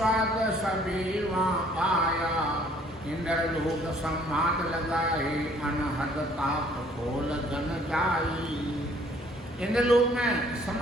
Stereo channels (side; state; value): both; normal; correlation 0.59